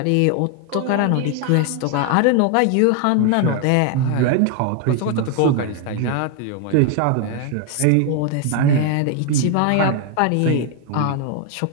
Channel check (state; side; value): different; both; correlation 0.01